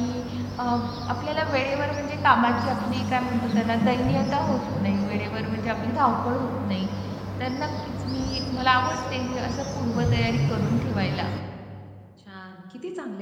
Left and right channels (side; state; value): both; identical; correlation 1.00